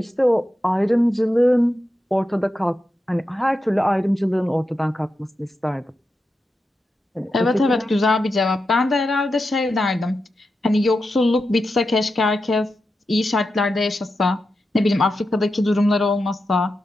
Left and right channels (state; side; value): normal; both; correlation 0.89